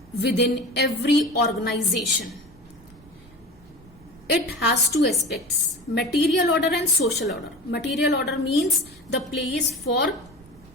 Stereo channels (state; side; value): noise; right; rumble, 25 dB below the sound